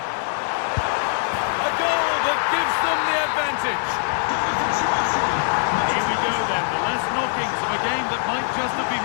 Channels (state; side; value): silent; right; digital silence